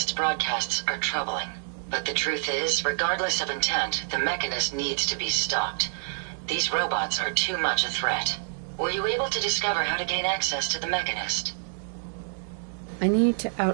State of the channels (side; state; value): left; silent; digital silence